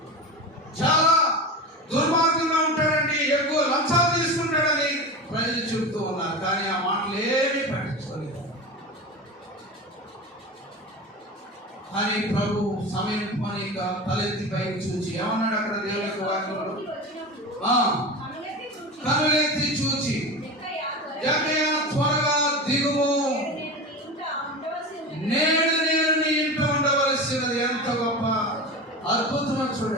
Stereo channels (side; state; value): both; normal; correlation 0.27